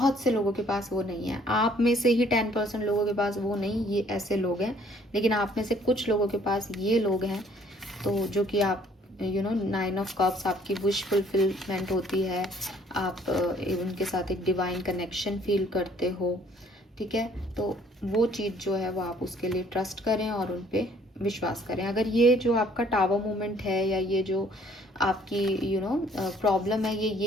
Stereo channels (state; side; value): normal; both; correlation 0.60